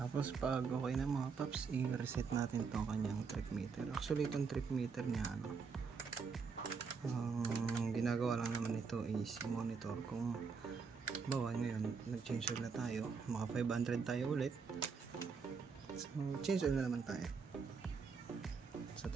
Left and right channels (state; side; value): quieter; left; 5.4 dB